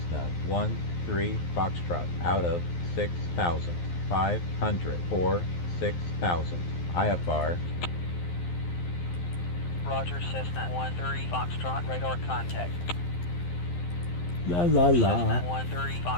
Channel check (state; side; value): late; right; 11 ms